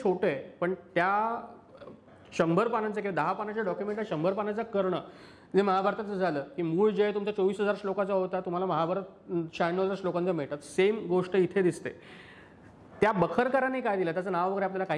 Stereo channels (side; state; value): both; identical; correlation 1.00